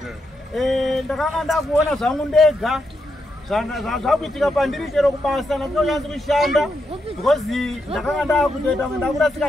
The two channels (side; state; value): both; normal; correlation 0.82